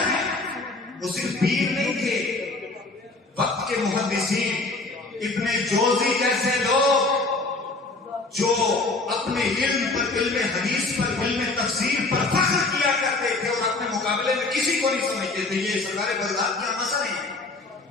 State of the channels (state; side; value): quieter; right; 3.4 dB